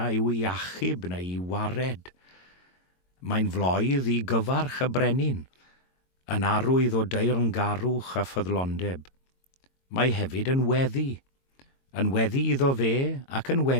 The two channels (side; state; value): right; late; 22 ms